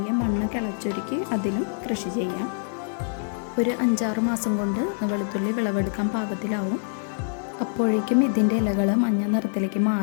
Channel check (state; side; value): silent; right; digital silence